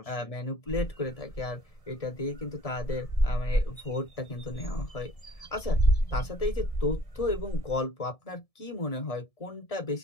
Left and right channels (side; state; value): right; late; 1.7 ms